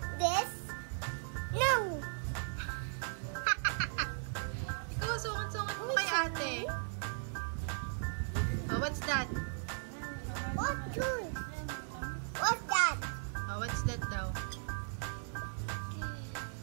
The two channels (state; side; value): silent; left; digital silence